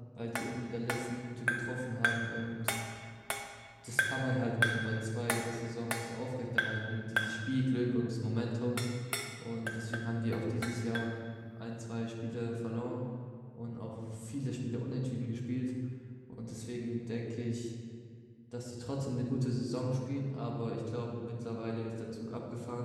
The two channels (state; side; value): identical; both; correlation 1.00